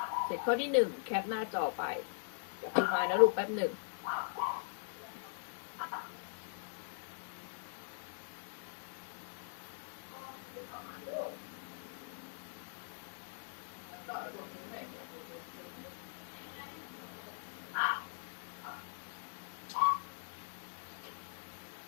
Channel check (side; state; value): right; silent; digital silence